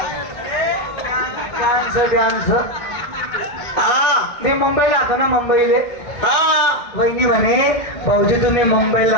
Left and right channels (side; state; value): right; late; 1.6 ms